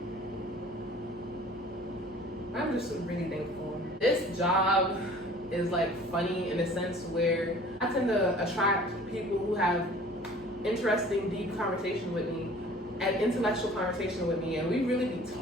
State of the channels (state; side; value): normal; both; correlation 0.49